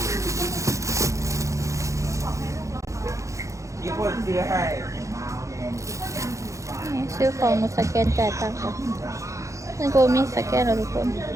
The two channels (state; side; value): late; left; 0.15 ms